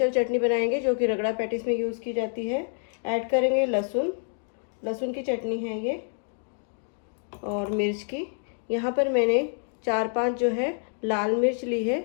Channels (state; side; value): silent; right; 60 dB below the other